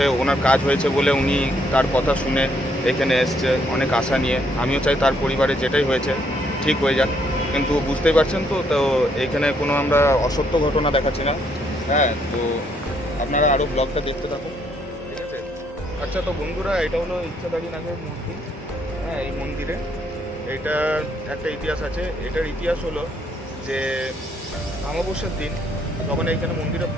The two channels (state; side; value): normal; both; correlation 0.71